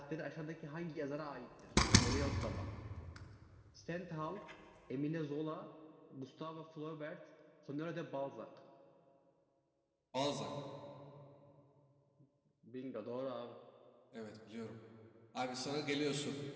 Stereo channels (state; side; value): identical; both; correlation 1.00